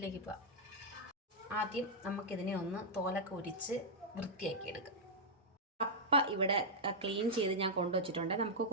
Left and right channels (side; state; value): both; normal; correlation -0.06